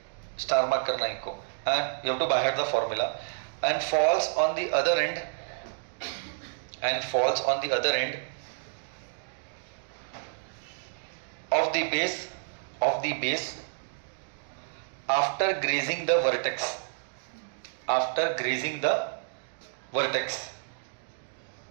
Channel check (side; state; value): left; silent; digital silence